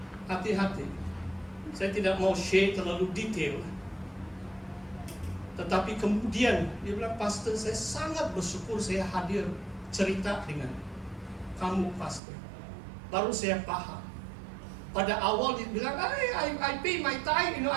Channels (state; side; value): drops out; left; at 12.2 s